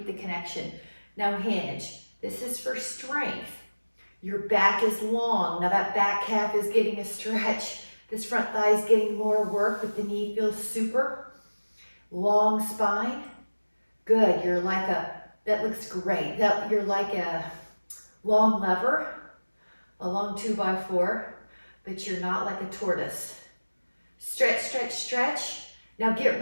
the connection. Now hinge. This is for strength. Your back is long. Now that back calf is getting a stretch. This front thigh is getting more work, but the knee feels super. Long spine. Good. You're like that looks great. You're like a long lever, a long 2x4, but you're not like a tortoise. Stretch, stretch, stretch. Now get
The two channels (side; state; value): both; inverted; correlation -1.00